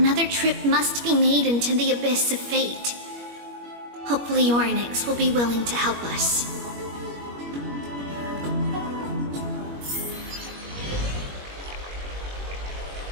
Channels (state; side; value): late; left; 21 ms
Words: trip must be made into the abyss of fate. Hopefully Orynyx will be willing to help us.